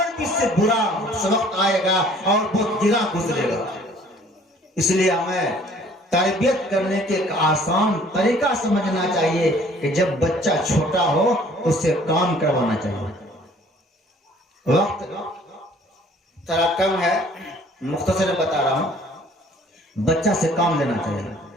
भी इससे बुरा वक्त आएगा और बहुत गिरा गुजरेगा। इसलिए हमें तरबियत करने के एक आसान तरीका समझना चाहिए कि जब बच्चा छोटा हो उससे काम करवाना चाहिए। वक्त थोड़ा कम है, मुख्तसर बता रहा हूं। बच्चा से काम लेना चाहिए।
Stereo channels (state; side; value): normal; both; correlation 0.55